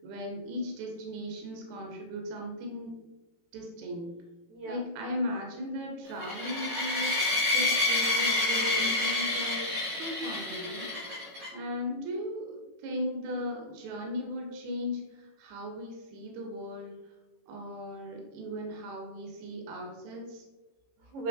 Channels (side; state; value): left; late; 18 ms